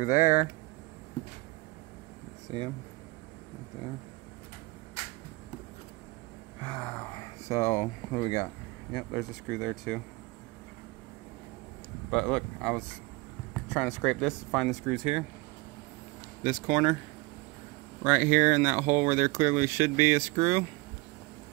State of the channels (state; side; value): quieter; left; 24.5 dB